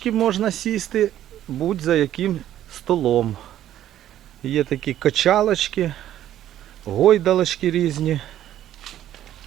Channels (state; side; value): quieter; left; 12.0 dB